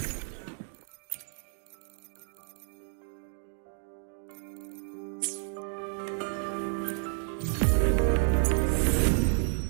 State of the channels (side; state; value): left; silent; 57 dB below the other